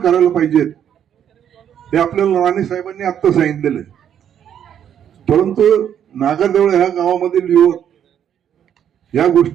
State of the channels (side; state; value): left; quieter; 9.3 dB